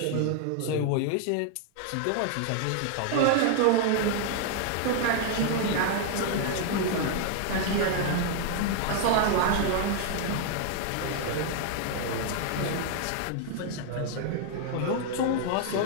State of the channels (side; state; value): both; different; correlation 0.00